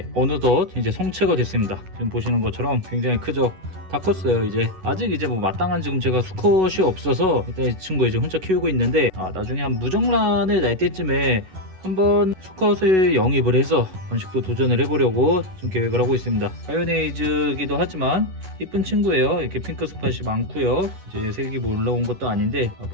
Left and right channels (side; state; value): left; late; 11 ms